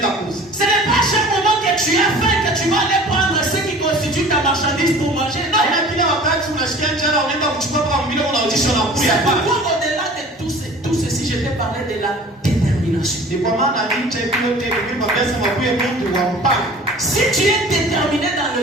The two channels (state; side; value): normal; both; correlation 0.44